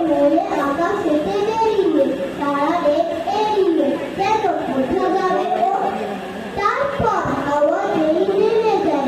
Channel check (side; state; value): both; identical; correlation 1.00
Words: মনে আকাশেতে বেরিয়ে, তারা দেখ এড়িয়ে কেন কোথা যাবে ও। তারপর হাওয়া যেই নেমে